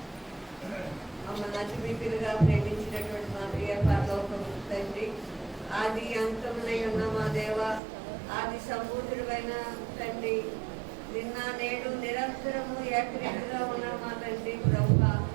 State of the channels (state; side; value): drops out; left; at 7.8 s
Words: ప్రేమించినటువంటి మా ప్రియ పరలోకపు తండ్రి, ఆది అంతమునై ఉన్న మా దేవ, ఆది సంపూర్ణుడైన తండ్రి, నిన్న నేడు నిరంతరము ఏకరీతిగా ఉన్న మా తండ్రి ప్రభువా,